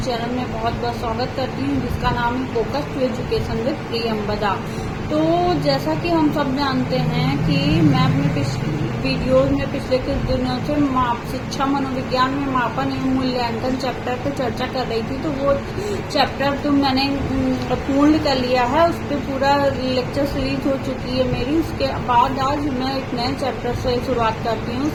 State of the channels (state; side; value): identical; both; correlation 1.00